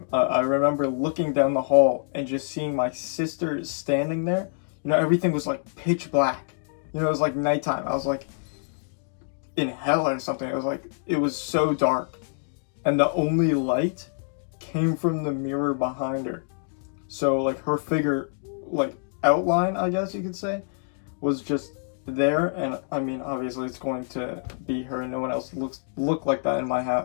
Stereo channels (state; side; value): silent; right; digital silence